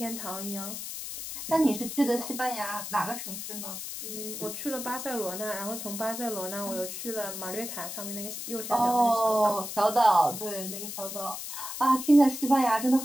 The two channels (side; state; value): left; noise; hiss, 7 dB below the sound